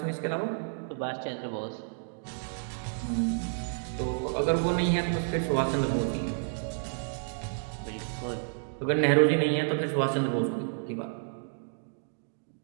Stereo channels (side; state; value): left; silent; digital silence